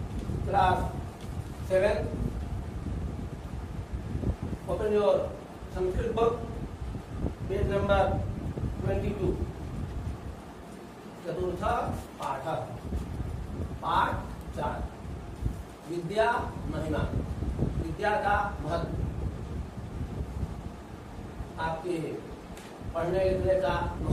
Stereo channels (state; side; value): identical; both; correlation 1.00